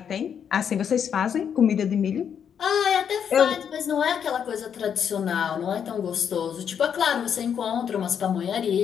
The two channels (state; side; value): quieter; right; 8.0 dB